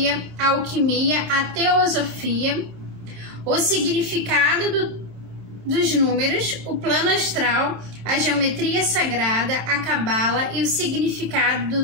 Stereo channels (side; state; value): left; late; 26 ms